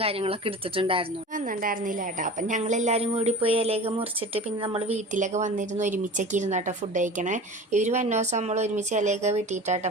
കാര്യങ്ങളൊക്കെ എടുത്തിട്ടുണ്ടായിരുന്നു. വന്നിട്ടുണ്ടായിരുന്നില്ല കേട്ടോ. അപ്പം ഞങ്ങളെല്ലാവരും കൂടി പോയി ഇലയൊക്കെ മുറിച്ചിട്ട് പിന്നെ നമ്മൾ വീട്ടിലൊക്കെ വന്നിരുന്ന് ഒരുമിച്ചൊക്കെ ഇരുന്നാട്ടോ ഫുഡ് കഴിക്കണേ. ഇവർ വന്ന ദിവസം നമ്മൾ ഒരുമിച്ച് ഇലയൊക്കെ വെട്ടിയിട്ടാട്ടോ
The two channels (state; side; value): normal; both; correlation 0.36